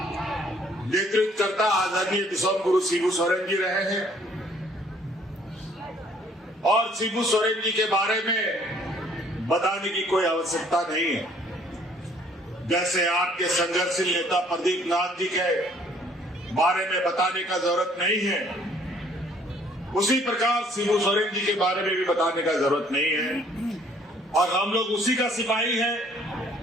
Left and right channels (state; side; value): normal; both; correlation 0.60